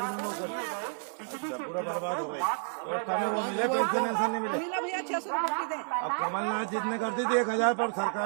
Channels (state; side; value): silent; left; 56 dB below the other